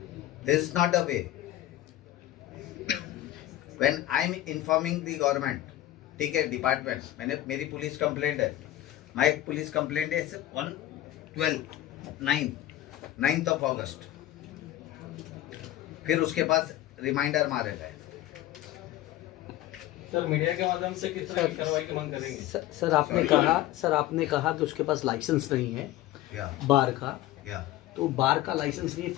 This is not a way. When I am informing the government, ठीक है, डिपार्टमेंट, मेरी पुलिस कंप्लेंट है, माई पुलिस कंप्लेंट है ऑन 9th ऑफ अगस्त। फिर उसके पास रिमाइंडर मारे गए। सर मीडिया के माध्यम से किस तरह की कार्रवाई की मांग करेंगे? सर आपने कहा कि उसके पास लाइसेंस नहीं है या बार का, या तो बार का लाइसेंस नहीं है,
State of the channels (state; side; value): quieter; right; 14.3 dB